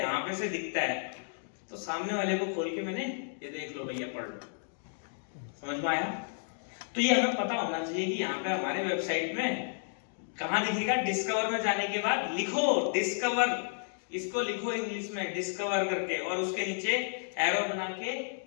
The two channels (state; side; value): silent; right; digital silence